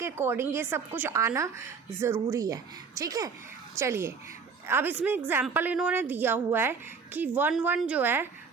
अकॉर्डिंग ये सब कुछ आना ज़रूरी है, ठीक है। चलिए अब इसमें एग्जाम्पल इन्होंने दिया हुआ है कि 1 1 जो है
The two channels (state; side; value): quieter; left; 5.6 dB